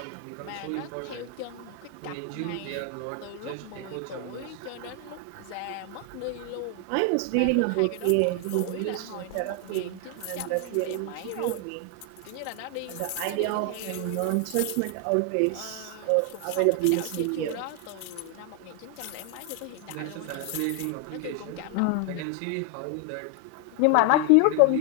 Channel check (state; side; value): different; both; correlation 0.00